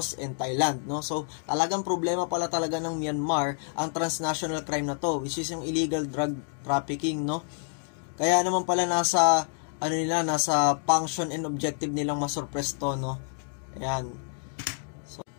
and Thailand, no? So, talagang problema pala talaga ng Myanmar ang transnational crime na to, which is yung illegal drug trafficking, no? Kaya naman pala nasa function and objective nilang masurpress to, no? Ayan. So,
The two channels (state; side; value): silent; right; 59 dB below the other